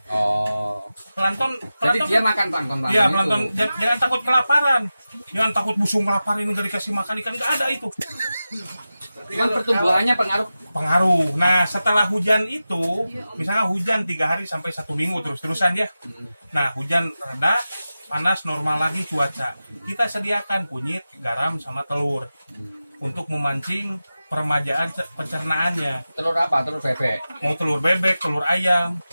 Oh. Plankton Jadi dia makan plankton. Iya, plankton. Jangan takut kelaparan. Jangan takut busung kelaparan ini nggak dikasih makan ikan, nggak ada itu. Cuman pertumbuhannya Pengaruh. Nah, setelah hujan itu, misalnya hujan 3 hari sampai 1 minggu terus-terusan ya. Nah, hujan reda, panas normal lagi cuaca. Kita sediakan kunyit, garam, sama telur untuk memancing peremajaan pencernaannya. telur apa? Telur bebek. Mau telur bebek, telur ayam.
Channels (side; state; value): both; inverted; correlation -0.94